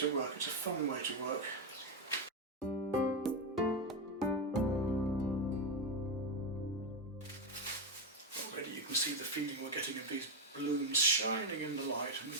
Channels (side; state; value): both; normal; correlation 0.08